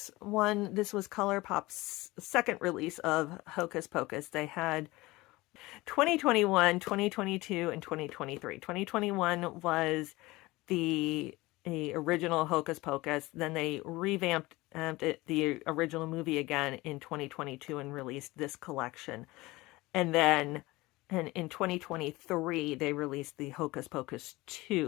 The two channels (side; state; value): right; quieter; 20.6 dB